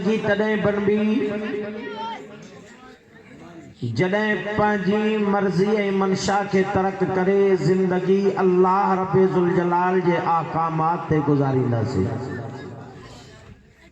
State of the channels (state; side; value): identical; both; correlation 1.00